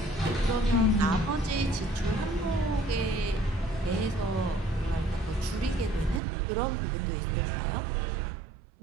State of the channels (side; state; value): left; drops out; at 6.2 s